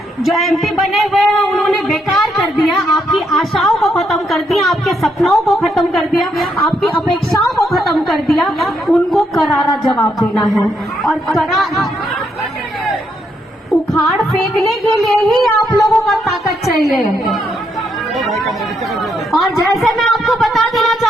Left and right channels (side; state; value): both; normal; correlation 0.77